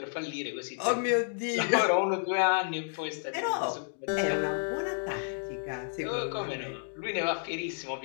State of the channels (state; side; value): silent; right; digital silence